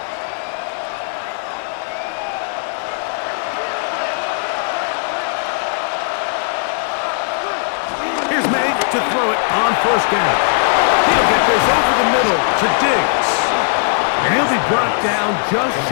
To throw it on 1st down. He'll get this over the middle to Diggs. And he'll be brought down just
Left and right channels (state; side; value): silent; right; 61 dB below the other